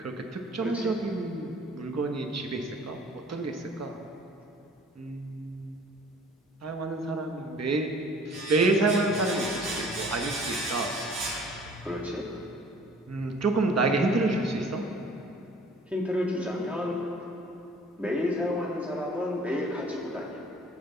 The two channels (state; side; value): normal; both; correlation 0.51